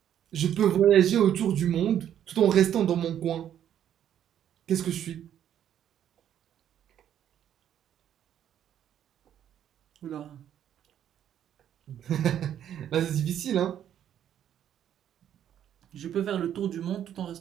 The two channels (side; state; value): left; quieter; 10.2 dB